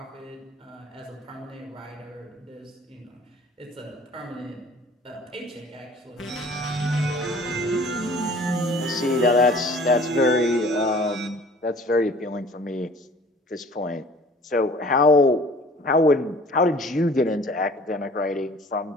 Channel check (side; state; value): both; normal; correlation 0.50